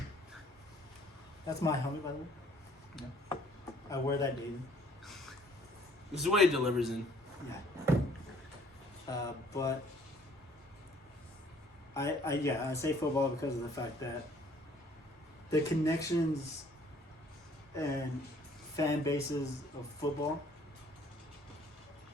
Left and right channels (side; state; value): both; normal; correlation 0.59